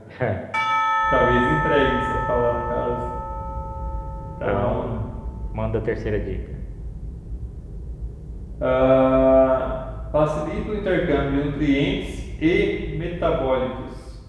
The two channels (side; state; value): both; identical; correlation 1.00